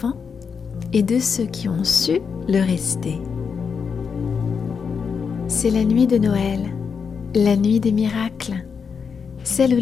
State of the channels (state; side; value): quieter; right; 6.1 dB